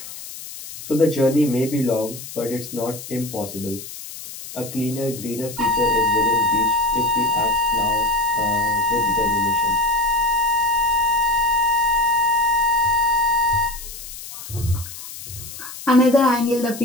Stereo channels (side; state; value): left; noise; hiss, 13 dB below the sound